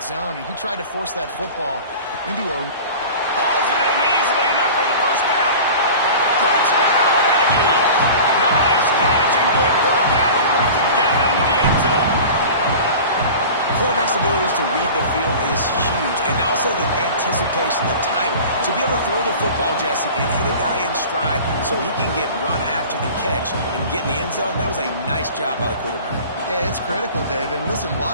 zone, and he tried to force that football into a... Hauls it in easily enough for the 1st down. Touchdown, Aggie! Nice catch and good work afterwards to get it into the end zone. Quarterback's abilities to read the field is huge, and also the anticipation, the timing, to be able to throw the football, Jesse, and hit a guy in stride so he can get run after the catch and get in the end zone. That was a nice job by the quarterback. Yeah, it's critical, David. Listen, a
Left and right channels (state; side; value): inverted; both; correlation -0.38